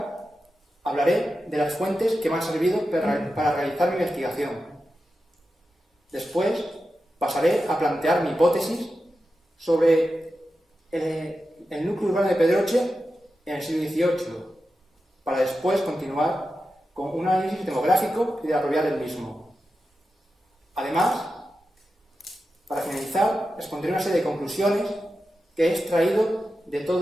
hablaré de las fuentes que me han servido para realizar mi investigación. Después, pasaré a plantear mi hipótesis sobre el núcleo urbano de Pedroche en el siglo XVIII, para después continuar con un análisis demográfico y de la propiedad del mismo. Además, para finalizar, expondré una serie de conclusiones que he extraído de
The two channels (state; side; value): normal; both; correlation 0.91